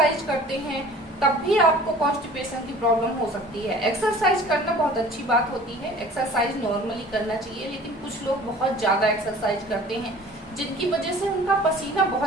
करते हैं तब भी आपको कॉन्स्टिपेशन की प्रॉब्लम हो सकती है। एक्सरसाइज करना बहुत अच्छी बात होती है, एक्सरसाइज नॉर्मली करना चाहिए, लेकिन कुछ लोग बहुत ज्यादा एक्सरसाइज करते हैं जिनकी वजह से उनका पसीना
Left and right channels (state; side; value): normal; both; correlation 0.47